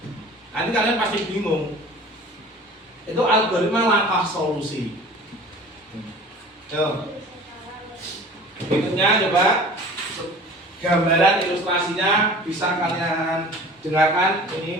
Nanti kalian pasti bingung. Itu algoritma langkah solusi. Berikutnya coba gambaran ilustrasinya bisa kalian dengarkan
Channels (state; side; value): normal; both; correlation 0.43